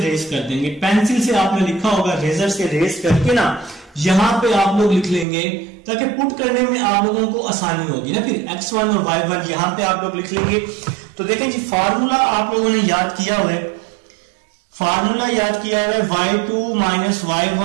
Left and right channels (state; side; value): drops out; left; at 5.2 s